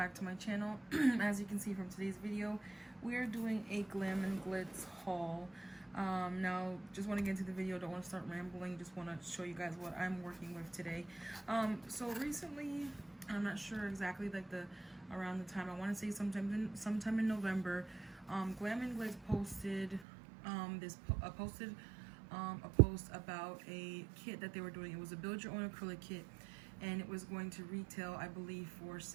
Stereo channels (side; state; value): left; drops out; at 20.1 s